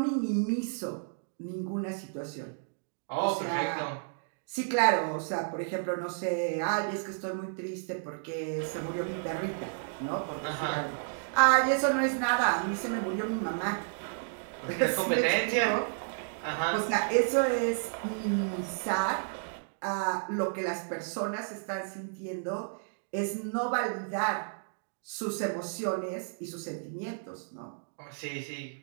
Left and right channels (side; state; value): left; silent; digital silence